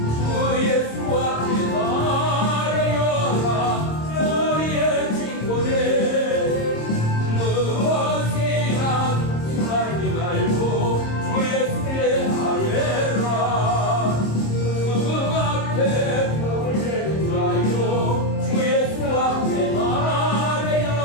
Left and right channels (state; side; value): late; right; 26 ms